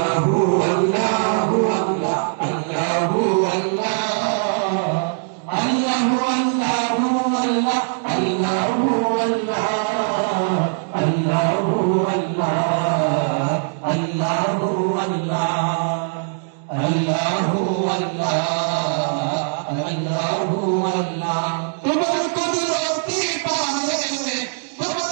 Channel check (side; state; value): left; silent; digital silence